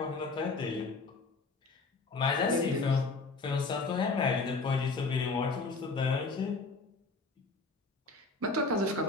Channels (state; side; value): quieter; right; 3.8 dB